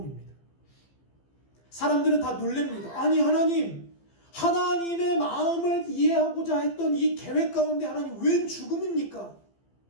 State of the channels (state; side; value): late; right; 15 ms